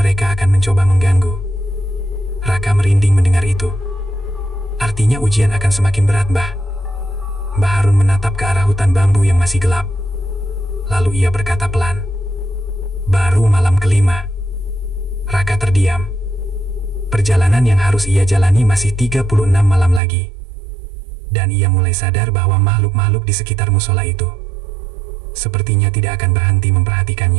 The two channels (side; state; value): left; drops out; at 20.0 s